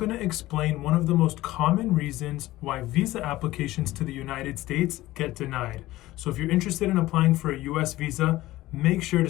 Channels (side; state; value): right; quieter; 16.9 dB